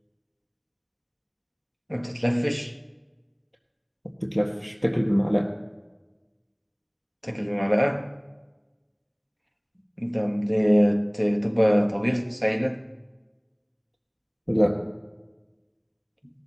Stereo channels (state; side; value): identical; both; correlation 1.00